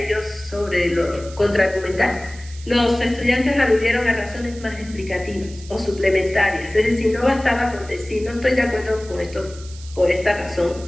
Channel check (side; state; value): right; noise; hiss, 19 dB below the sound